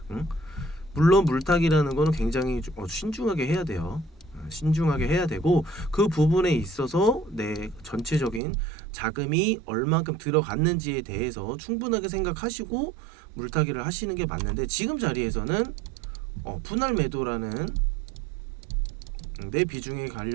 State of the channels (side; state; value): left; drops out; at 8.4 s